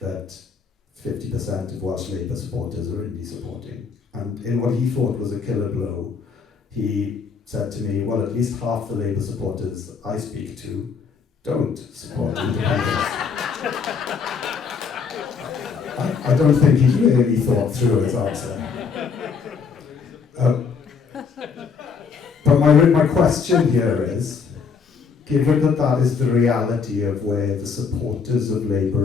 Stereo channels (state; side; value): quieter; right; 5.7 dB